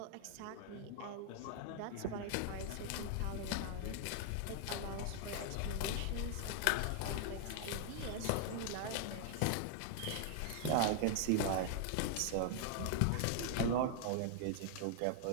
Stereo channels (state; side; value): different; both; correlation 0.00